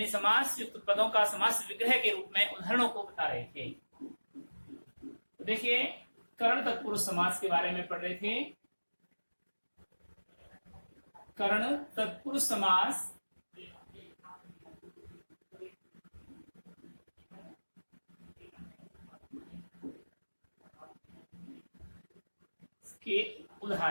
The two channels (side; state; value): both; inverted; correlation -1.00